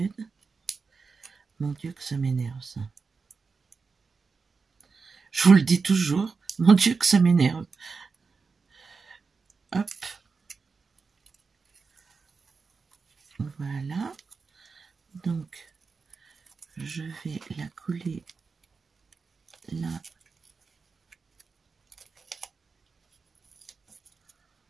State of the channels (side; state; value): left; quieter; 4.8 dB